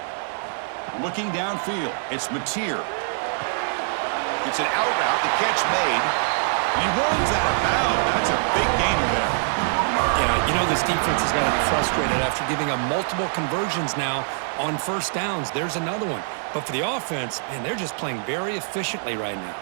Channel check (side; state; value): left; silent; 63 dB below the other